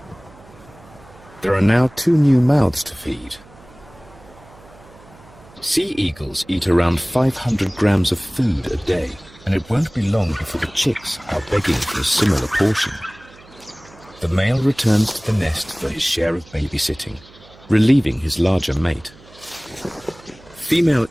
There are now 2 new mouths to feed. Sea eagles eat around 500 grams of food a day, and it won't be long before the chicks are begging for a similar portion. The male returns to the nest for his share of babysitting, relieving his larger mate. Female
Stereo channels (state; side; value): noise; right; hum, 24 dB below the sound